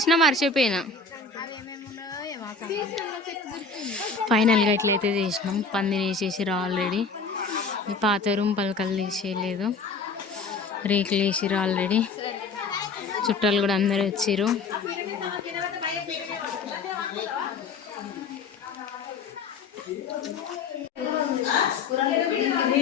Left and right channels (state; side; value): quieter; right; 4.4 dB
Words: మర్చిపోయినా. ఫైనల్గా ఇట్లయితే చేసినాం. పందిరి వేసేసిర్రు ఆల్రెడీ. ఈ పాత రూమ్ పలకలు తీసేయలేదు, రేకులు వేసిర్రు ఆల్రెడీ. చుట్టాలు కూడా అందరు వచ్చిర్రు.